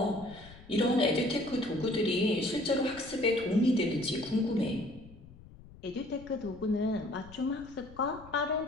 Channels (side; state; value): left; noise; rumble, 20 dB below the sound